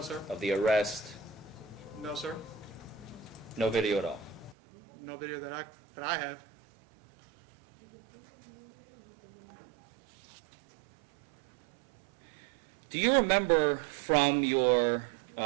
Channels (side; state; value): left; drops out; at 4.5 s